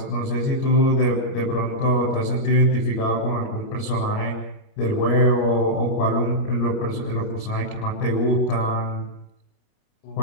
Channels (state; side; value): late; right; 29 ms